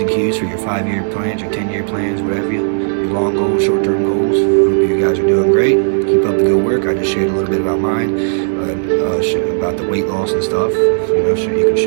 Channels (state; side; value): silent; left; digital silence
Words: and Q's for your 5-year plans, your 10-year plans, whatever your long goals, short-term goals. Hope you guys are doing great. Keep up the good work. I just shared a little bit about mine, about the weight loss and stuff. Sure, you can